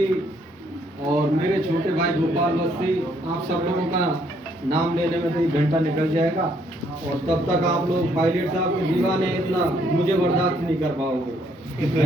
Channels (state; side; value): normal; both; correlation 0.69